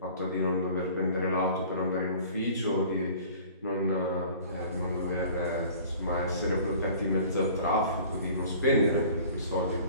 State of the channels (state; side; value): inverted; both; correlation -0.47